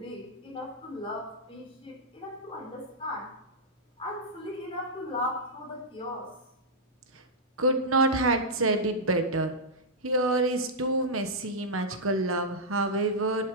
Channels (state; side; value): normal; both; correlation -0.08